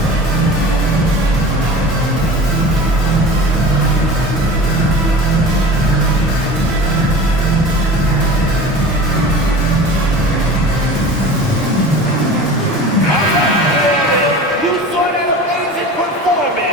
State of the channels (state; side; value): normal; both; correlation 0.37